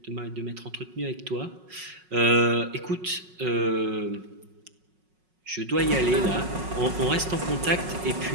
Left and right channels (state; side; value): late; left; 5.4 ms